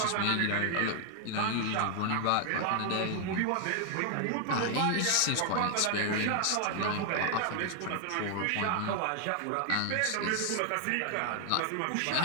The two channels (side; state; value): both; different; correlation 0.00